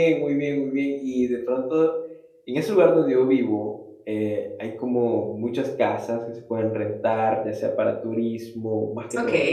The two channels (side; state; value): both; identical; correlation 1.00